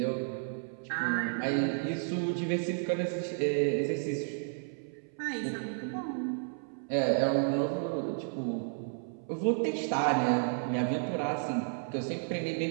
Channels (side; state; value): left; silent; 56 dB below the other